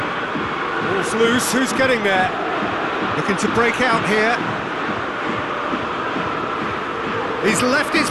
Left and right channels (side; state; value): both; identical; correlation 1.00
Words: Ball's loose, who's getting there? Looking to break out here. He's left his